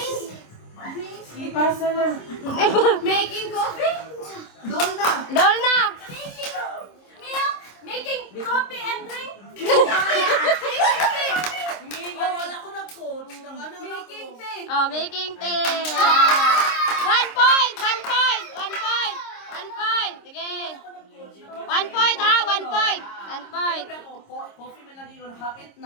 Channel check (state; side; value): late; right; 26 ms